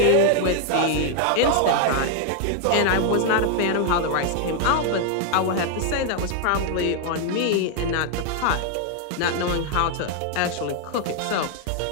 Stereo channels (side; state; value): both; different; correlation 0.00